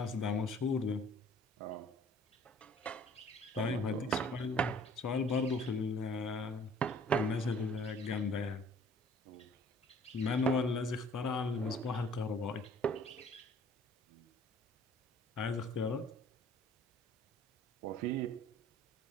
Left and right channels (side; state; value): both; normal; correlation 0.54